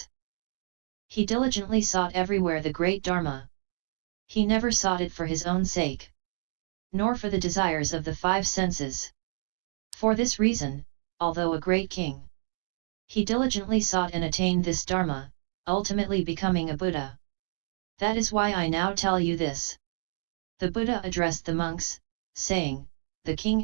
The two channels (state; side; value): silent; left; 56 dB below the other